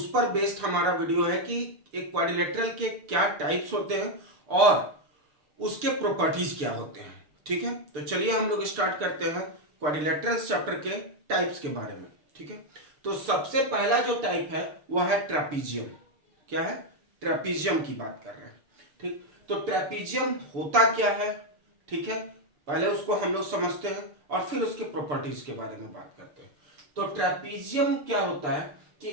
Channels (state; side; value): late; left; 6.8 ms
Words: पर बेस्ड हमारा वीडियो है कि एक क्वाड्रिलेटरल के क्या टाइप्स होते हैं और उसके प्रॉपर्टीज क्या होते हैं। ठीक है, तो चलिए हम लोग स्टार्ट करते हैं क्वाड्रिलेटरल्स चैप्टर के टाइप्स के बारे में। ठीक है, तो सबसे पहला जो टाइप है वो है ट्रेपीजियम। क्या है? ट्रेपीजियम की बात कर रहे हैं। ठीक, तो ट्रेपीजियम होता क्या है? ठीक है, पहले उसको हम लोग समझते हैं और फिर उसके प्रॉपर्टीज के बारे में बात करते हैं। तो ट्रेपीजियम क्या होता है कि